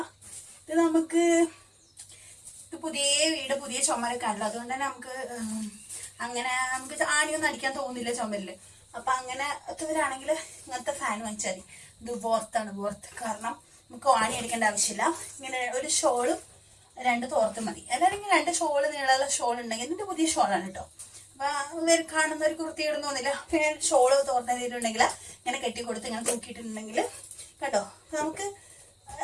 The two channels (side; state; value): both; identical; correlation 1.00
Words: ഇത് നമുക്ക് പുതിയ വീട് പുതിയ ചുമരൊക്കെ ആണല്ലോ, അതുകൊണ്ട് തന്നെ നമുക്ക് ആണിയൊന്നും അടിക്കാൻ തോന്നില്ല ചുമരില്. അപ്പൊ അങ്ങനത്തവരാണെങ്കിൽ ഇങ്ങനത്തെ ഫാൻ വാങ്ങിച്ചാൽ മതി. ഇത് വോർത്താണ്. കാരണം നമുക്ക് ആണി അടിക്കേണ്ട ആവശ്യമില്ല. ഇങ്ങനെ ഒരു ഷോളും 2 തോർത്തും മതി. അല്ലെങ്കിൽ 2 ഷോള് നീളമുള്ള ഷോൾ ഉണ്ടെങ്കിൽ ഇതിന്റെ പുതിയ ഷോളാണ് കേട്ടോ. അപ്പൊ കാണുന്നവർക്ക് വൃത്തിയിടുന്ന തോന്നില്ല. പിന്നെ ഷോള് തോർത്തിട്ടുണ്ടെങ്കിൽ ഇങ്ങനെ കെട്ടിക്കൊടുത്ത് ഇങ്ങനെ തൂക്കിയിട്ടുണ്ടെങ്കിൽ കേട്ടോ നമുക്ക്